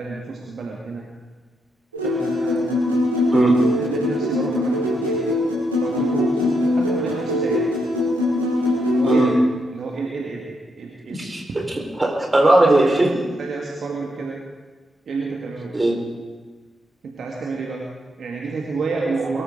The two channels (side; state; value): both; normal; correlation 0.80